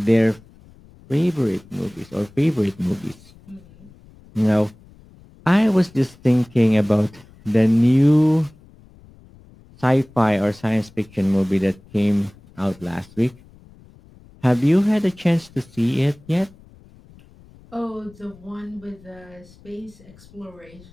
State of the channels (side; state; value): left; noise; rumble, 25 dB below the sound